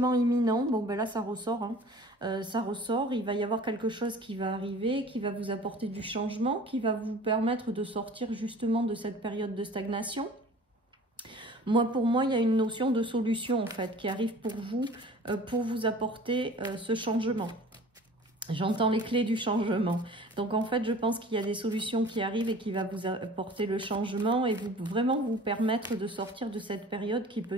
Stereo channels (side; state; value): both; normal; correlation 0.45